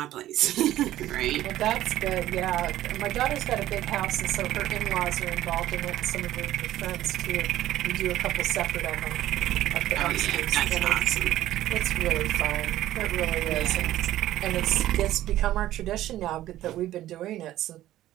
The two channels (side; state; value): left; quieter; 14.0 dB